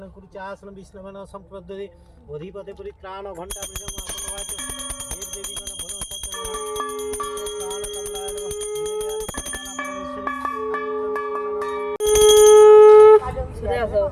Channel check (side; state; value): both; identical; correlation 1.00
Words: कुरुच आसन विष्णुवन संप्रददे अधिपते परित्राण घंटा देव देवीगण